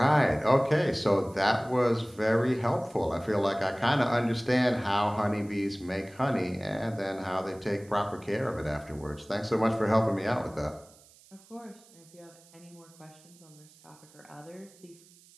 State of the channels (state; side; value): noise; right; hiss, 26 dB below the sound